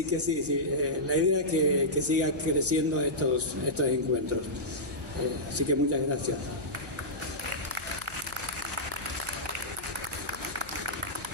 que sí, la idea es que siga creciendo estos encuentros. Así que muchas gracias.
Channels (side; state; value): left; noise; hum, 21 dB below the sound